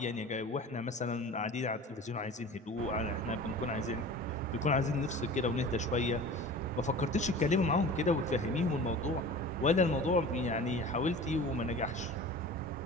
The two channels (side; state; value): both; normal; correlation 0.38